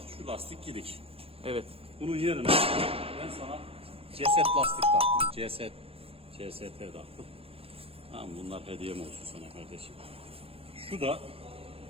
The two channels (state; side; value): late; left; 0.28 ms